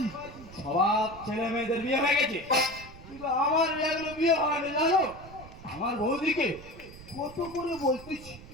সব ছেলে মেয়েদের বিয়ে হয়ে গেছে, কিন্তু আমার এগুলো বিয়ে হয়নি জানো। আমার বৌদিকে কত করে বলতেছি,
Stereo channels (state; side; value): noise; right; rumble, 17 dB below the sound